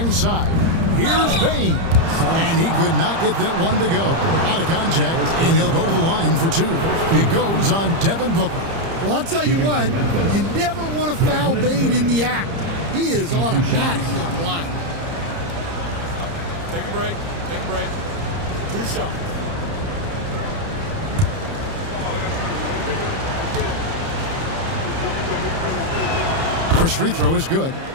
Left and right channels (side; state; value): left; late; 30 ms